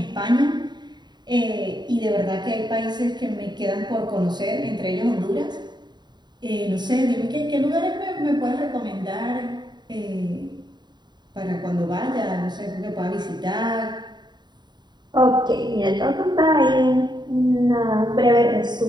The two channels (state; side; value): late; left; 0.21 ms